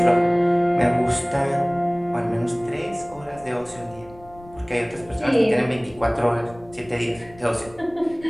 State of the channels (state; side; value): noise; left; rumble, 22 dB below the sound